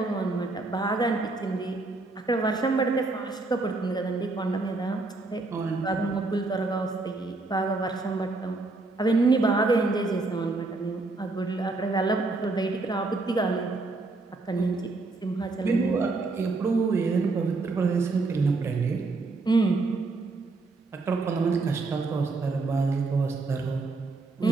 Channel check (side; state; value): left; quieter; 3.5 dB